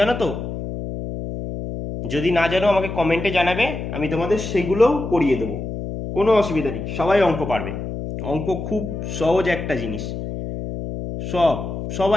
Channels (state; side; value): noise; left; hum, 6 dB below the sound